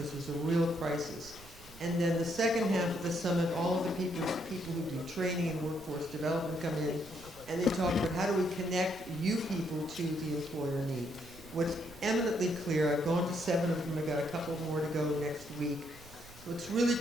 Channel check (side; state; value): right; noise; rumble, 20 dB below the sound